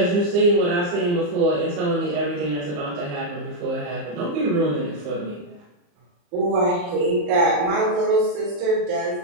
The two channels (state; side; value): late; left; 34 ms